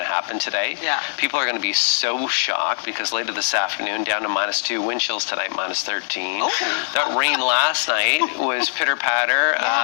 to happen today. Yeah. People are going to be so shocked because later this afternoon down to -2, wind chills tonight -13. That rain last night was pitter patter,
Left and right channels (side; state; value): right; silent; 65 dB below the other